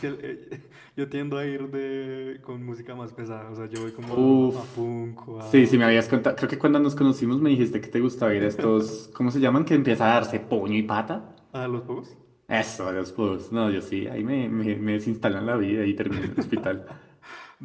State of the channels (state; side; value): identical; both; correlation 1.00